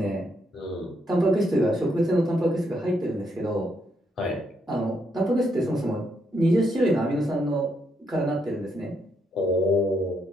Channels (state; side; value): normal; both; correlation 0.77